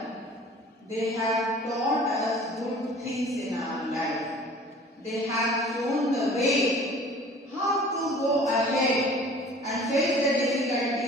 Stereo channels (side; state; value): both; normal; correlation 0.47